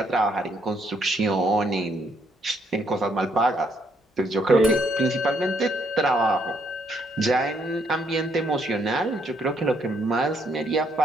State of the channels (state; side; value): normal; both; correlation 0.71